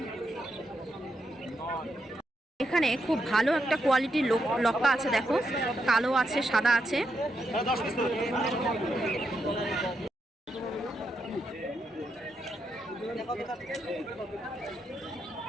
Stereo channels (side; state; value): both; normal; correlation 0.82